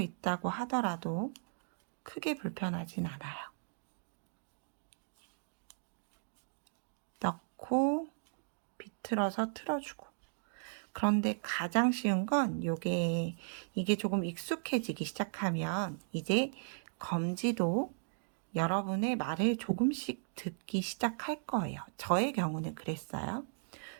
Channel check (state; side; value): silent; left; digital silence